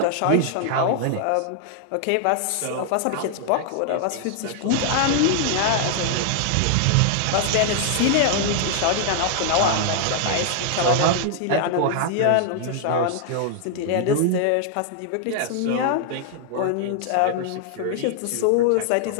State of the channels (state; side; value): different; both; correlation -0.01